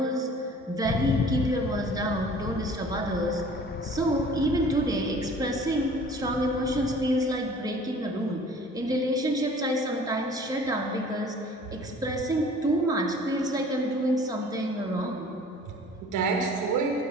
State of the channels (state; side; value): normal; both; correlation 0.49